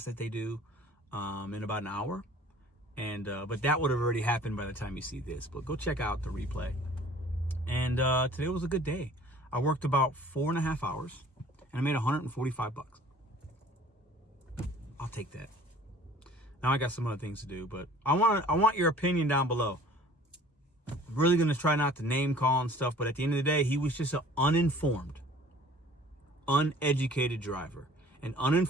that they do in about an hour. And but that would have already happened by the time you see this. But go check out the replay. And today was a good day. I worked about 4.5 hours, and I made $145. I'll take that. Now I got some other things to do, but I want your opinion down below. I'm really gonna try not to name call and stuff, but at the end of the day, he was just an uninformed, uneducated driver. And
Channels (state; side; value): normal; both; correlation 0.50